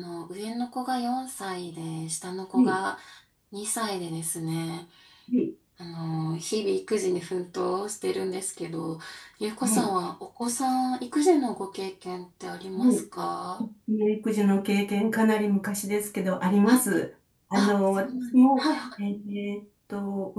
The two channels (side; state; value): both; identical; correlation 1.00